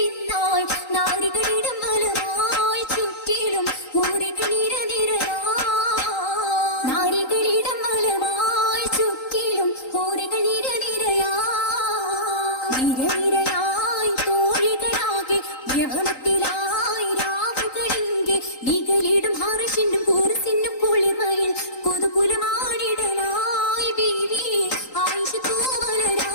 നാരികളിടം മലമായി ചുറ്റിലും ഊരികൾ നാരികളിടം മലമായി ചുറ്റിലും ഊരികൾ നിരനിരയായി തോഴികളാകെ യവനത്തിലായി രാവുകളിങ്കെ നികളിടും ഹർഷിനും കൂർസിനും കുളിർമയിൽ കുതുകുലമാടിടലായി ബീവി ആയിഷ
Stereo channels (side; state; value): right; late; 3.8 ms